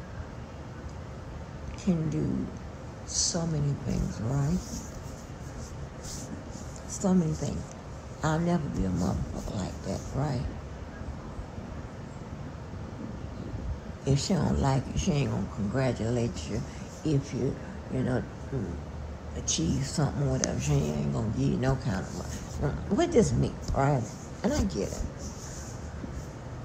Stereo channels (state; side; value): identical; both; correlation 1.00